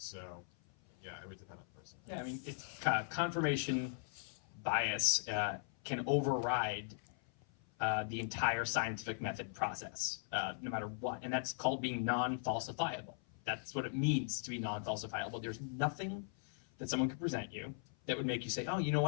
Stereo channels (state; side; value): silent; right; 51 dB below the other